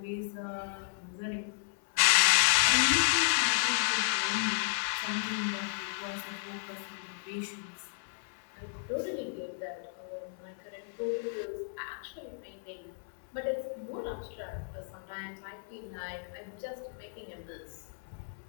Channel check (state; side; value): silent; right; 56 dB below the other